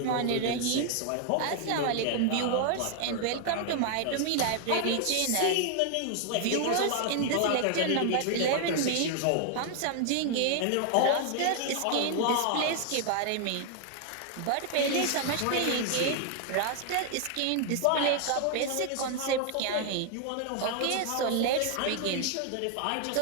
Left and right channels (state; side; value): different; both; correlation 0.00